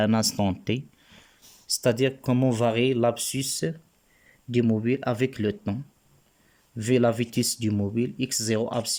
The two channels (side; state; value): both; identical; correlation 1.00